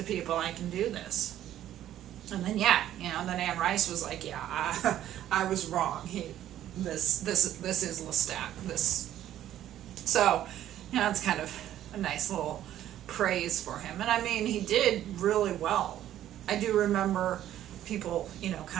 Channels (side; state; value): left; quieter; 12.1 dB